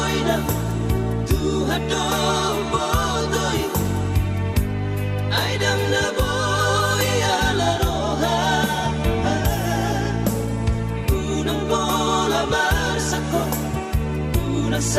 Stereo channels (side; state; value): both; identical; correlation 1.00